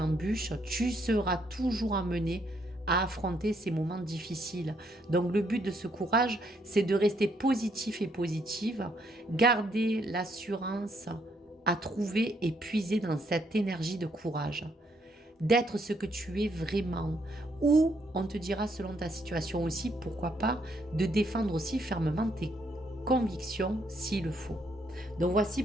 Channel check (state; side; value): normal; both; correlation 0.72